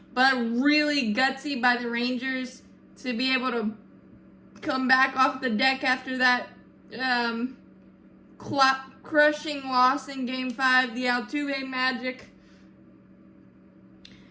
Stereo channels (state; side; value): identical; both; correlation 1.00